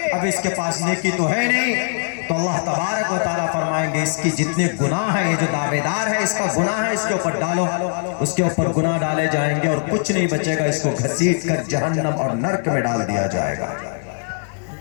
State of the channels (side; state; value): right; silent; 60 dB below the other